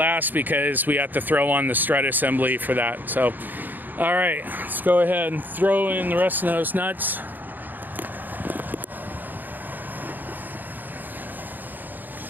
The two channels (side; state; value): left; late; 0.087 ms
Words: because we have to throw on the strut assembly for that. So, all right, let's go ahead and throw in the rest of those nuts.